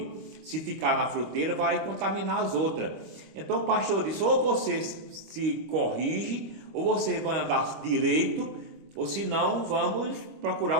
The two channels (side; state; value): left; late; 25 ms